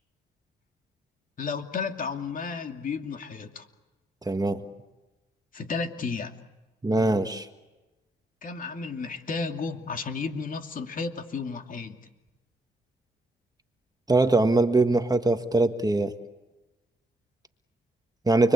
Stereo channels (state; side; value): normal; both; correlation 0.74